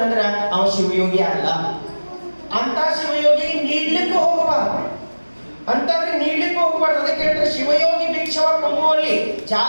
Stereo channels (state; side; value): inverted; both; correlation -1.00